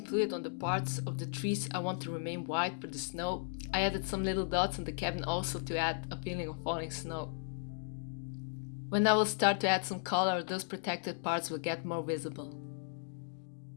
fluid on the parts of the trees I want to remain white for the snow. I added some little dots on the cabin also to add a feeling of falling snow. When I will start to add some color, those protected parts will get more visible.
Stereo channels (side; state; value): right; silent; digital silence